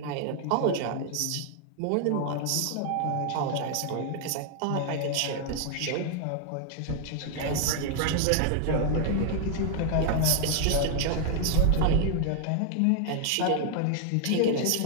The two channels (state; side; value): different; both; correlation 0.00